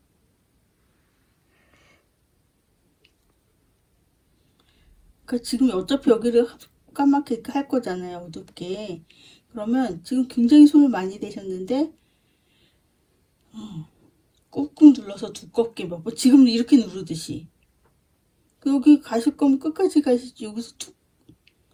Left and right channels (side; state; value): both; identical; correlation 1.00